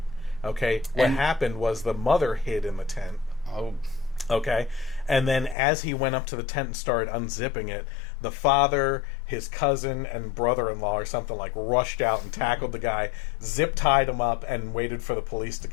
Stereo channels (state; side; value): drops out; right; at 5.6 s